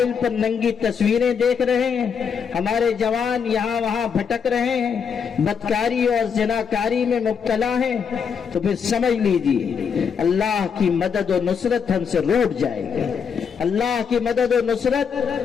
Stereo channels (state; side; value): quieter; right; 6.6 dB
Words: پر ننگی تصویریں دیکھ رہے ہیں، ہمارے جوان یہاں وہاں بھٹک رہے ہیں، بدکاری اور زناکاری میں مبتلا ہیں، تو پھر سمجھ لیجیے اللہ کی مدد و نصرت ہم سے روٹ جائے گی۔ اللہ کی مدد و نصرت